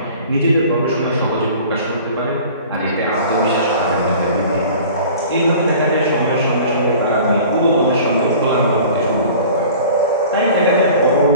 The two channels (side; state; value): both; inverted; correlation -0.44